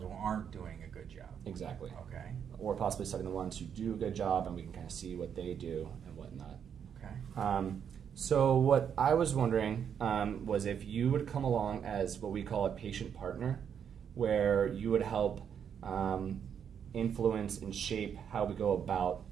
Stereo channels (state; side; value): quieter; left; 8.0 dB